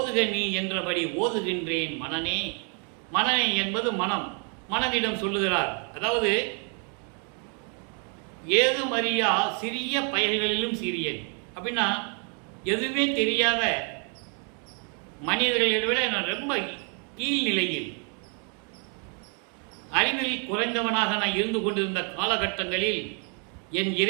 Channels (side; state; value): left; quieter; 38.2 dB